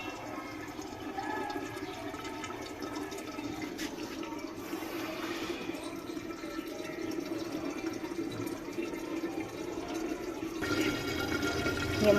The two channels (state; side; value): identical; both; correlation 1.00